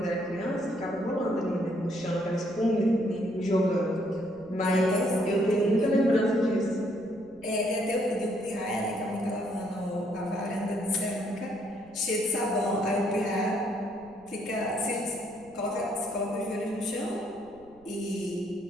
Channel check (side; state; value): right; noise; rumble, 27 dB below the sound